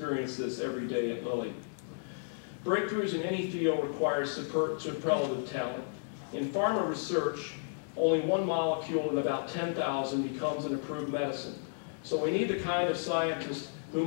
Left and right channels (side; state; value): right; silent; digital silence